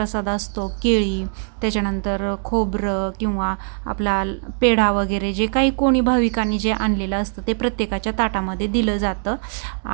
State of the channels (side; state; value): left; silent; digital silence